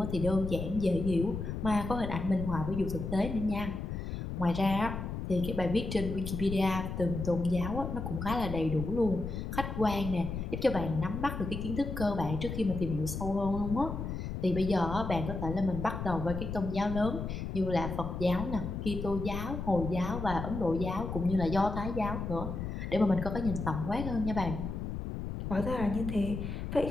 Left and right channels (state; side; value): noise; left; rumble, 5 dB below the sound